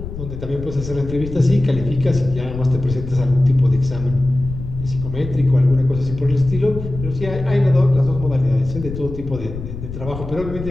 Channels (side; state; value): left; noise; rumble, 9 dB below the sound